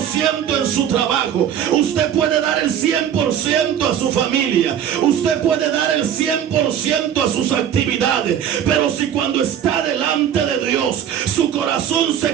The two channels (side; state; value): left; quieter; 9.5 dB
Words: en su trabajo. Usted puede dar el 100% a su familia. Usted puede dar el 100% a sus actividades. Pero si cuando está delante de Dios, su corazón